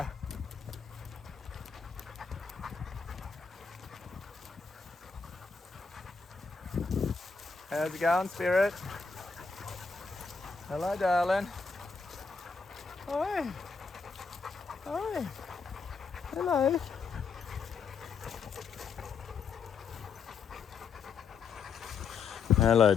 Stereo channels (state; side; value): quieter; right; 5.2 dB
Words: How's it going, Spirit? Hello, darling. Hi. Hi. Hello. Hello,